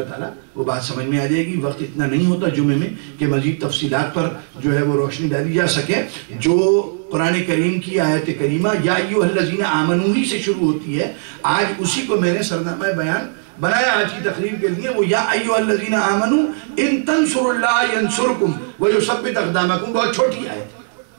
تعالیٰ وہ بات سمجھ میں آ جائے گی۔ وقت اتنا نہیں ہوتا جمعے میں کہ مزید تفصیلات پر جو ہے وہ روشنی ڈالی جا سکے۔ جو قرآن کریم کی آیت کریمہ یا ایھا الذین آمنوا ہی سے شروع ہوتی ہے، آج اسی کو میں نے سرنامہ بیان بنایا آج کی تقریر کے لیے، وہ یا ایھا الذین آمنوا ان تنصروا اللہ ینصرکم ویثبت اقدامکم، بہت چھوٹی آیت ہے۔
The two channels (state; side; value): silent; left; digital silence